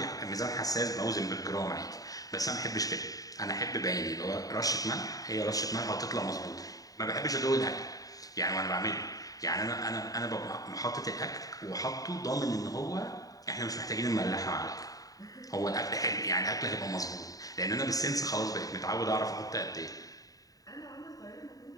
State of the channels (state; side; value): late; right; 0.18 ms